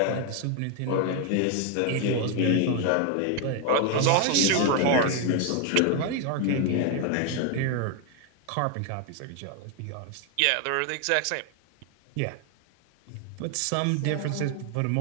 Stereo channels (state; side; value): different; both; correlation 0.01